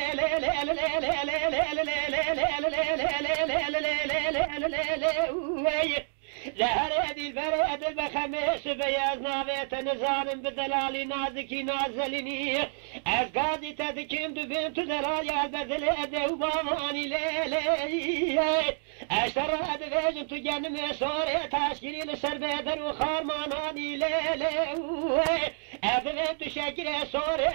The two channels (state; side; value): silent; left; 59 dB below the other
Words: لا هريدي البريد البخميس بياز نابيت نزان بدلالي نازكي نازليني أزقادي تذكيم دبنت دلالي البذل أدو باماني ليلي أشتر أدفاج تجنم صوري تاشكري لسر بيدر وخارماناني ليلي أدفاج تشكري